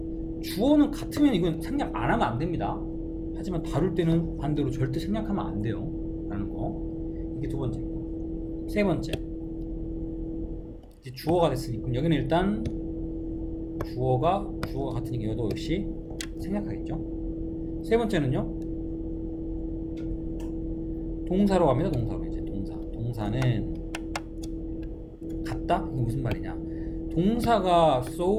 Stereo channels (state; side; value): identical; both; correlation 1.00